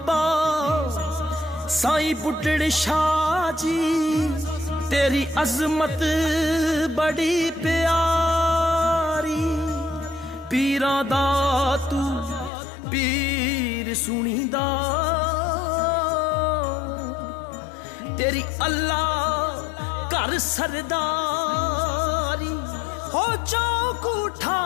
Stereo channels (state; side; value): drops out; right; at 12.5 s